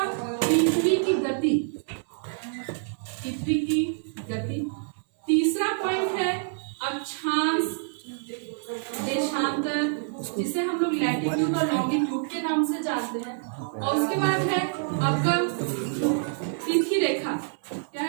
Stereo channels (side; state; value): left; silent; 57 dB below the other